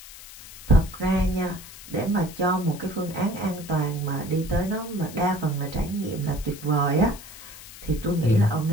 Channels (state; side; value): noise; left; hiss, 16 dB below the sound